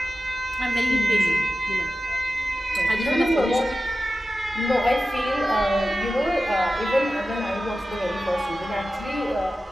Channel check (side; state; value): both; normal; correlation 0.94